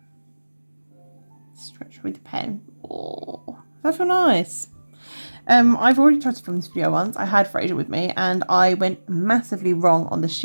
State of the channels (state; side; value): inverted; both; correlation -1.00